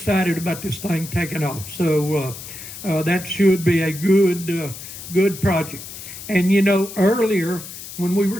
about this thing taking off. So that should be a good project. And you know, earlier when we were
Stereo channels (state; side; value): noise; left; hiss, 12 dB below the sound